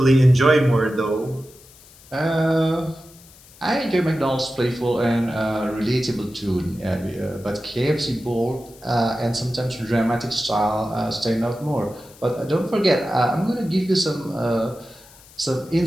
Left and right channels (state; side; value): noise; left; hiss, 24 dB below the sound